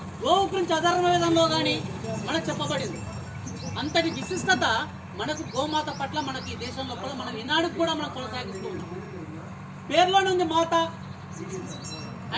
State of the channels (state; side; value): identical; both; correlation 1.00